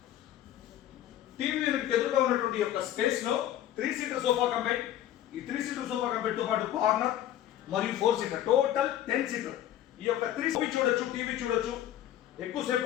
టీవీ యూనిట్ ఎదురుగా ఉన్నటువంటి యొక్క స్పేస్ లో 3 సీటర్ సోఫా కంబైన్, ఈ 3 సీటర్ సోఫా కంబైన్ తో పాటు కార్నర్ మరియు 4 సీటర్ టోటల్ 10 సీటర్. ఈ యొక్క 3 చూడొచ్చు, టీవీ చూడొచ్చు,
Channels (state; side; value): quieter; right; 12.2 dB